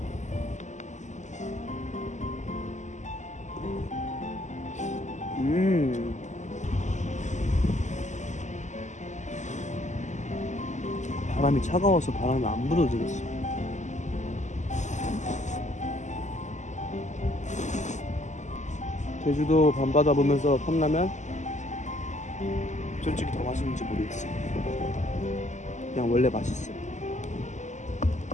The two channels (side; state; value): right; late; 0.34 ms